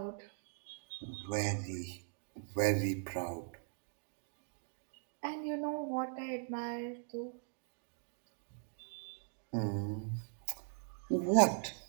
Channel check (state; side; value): silent; left; digital silence